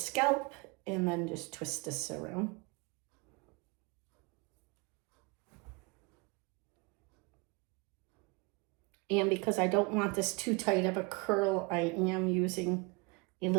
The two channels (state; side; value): quieter; left; 27.9 dB